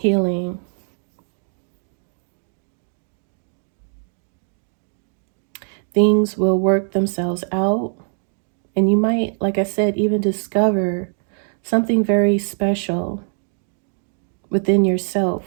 Things will work themselves out. And you might, like I said, even discover something very special within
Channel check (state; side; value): silent; left; 62 dB below the other